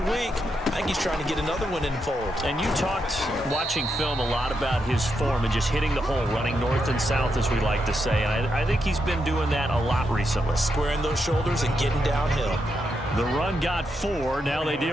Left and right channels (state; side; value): normal; both; correlation 0.83